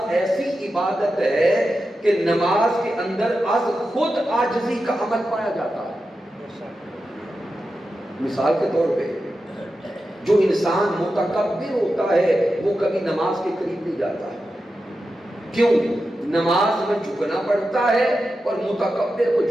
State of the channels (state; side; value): normal; both; correlation 0.91